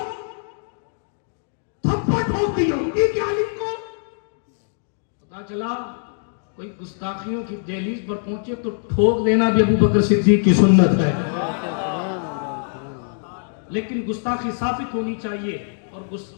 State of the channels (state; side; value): silent; right; digital silence